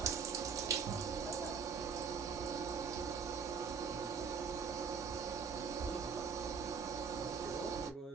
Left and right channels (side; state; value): left; quieter; 6.0 dB